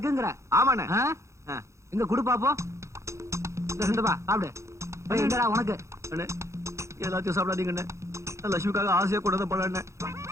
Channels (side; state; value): left; late; 0.14 ms